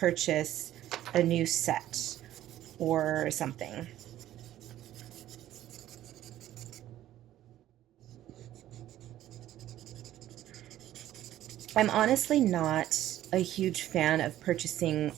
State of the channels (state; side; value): quieter; left; 13.1 dB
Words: a new set or something. I'm honestly not a huge fan of purchasing